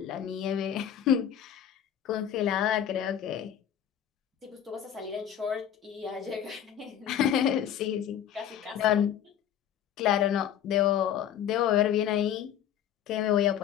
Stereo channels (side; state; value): right; quieter; 9.8 dB